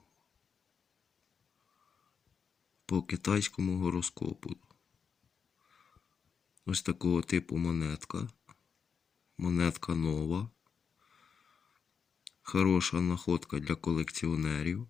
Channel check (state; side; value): quieter; right; 6.4 dB